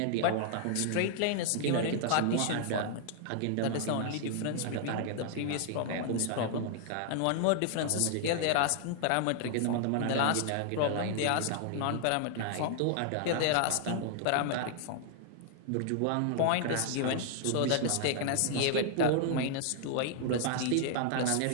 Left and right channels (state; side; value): different; both; correlation 0.00